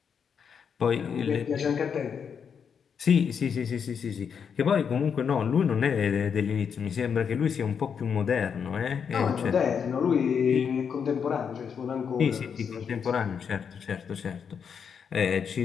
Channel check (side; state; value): right; quieter; 6.9 dB